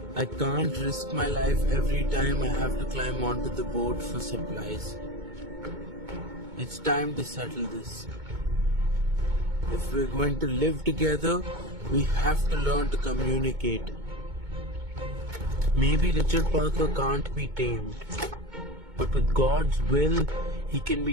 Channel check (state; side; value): late; left; 2.2 ms